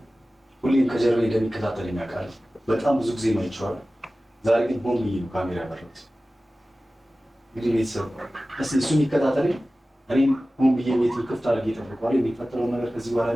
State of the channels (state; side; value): normal; both; correlation 0.96